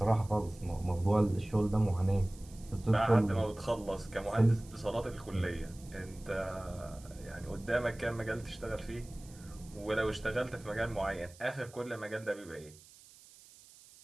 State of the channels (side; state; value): right; noise; hiss, 22 dB below the sound